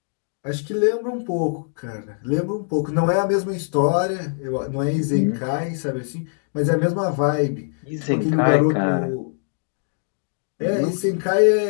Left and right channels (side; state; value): right; silent; digital silence